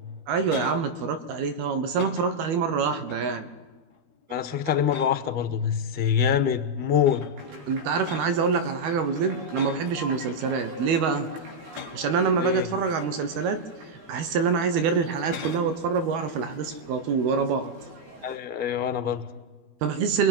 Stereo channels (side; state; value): left; late; 12 ms